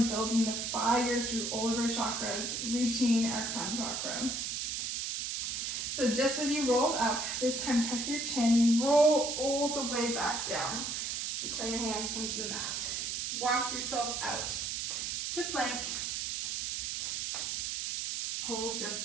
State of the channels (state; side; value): noise; right; hiss, 2 dB below the sound